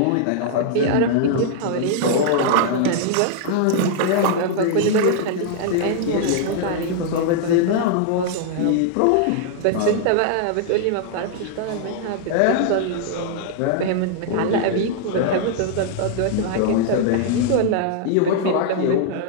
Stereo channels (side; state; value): both; different; correlation 0.00